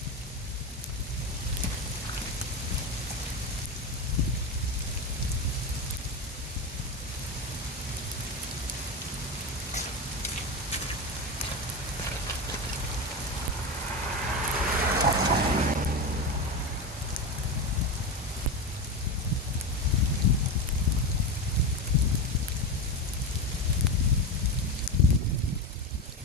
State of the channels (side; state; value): both; normal; correlation 0.18